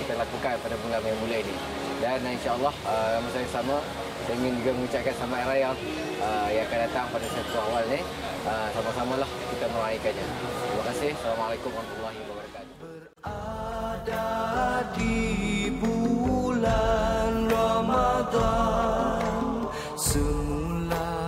kita lakukan pada bulan yang mulia ini. Dan insyaAllah masa yang sama saya ingin juga mengucapkan selamat hari raya yang akan datang pada 1 awal ni. Sama-samalah kita meraihkannya. Terima kasih. Assalamualaikum warahmatullahi wabarakatuh. Berada di bulan Ramadan semula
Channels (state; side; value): identical; both; correlation 1.00